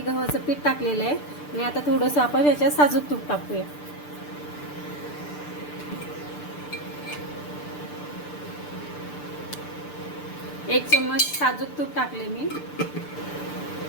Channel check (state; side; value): late; right; 6.8 ms